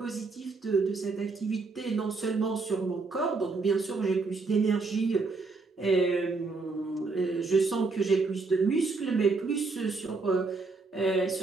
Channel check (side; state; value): left; quieter; 4.0 dB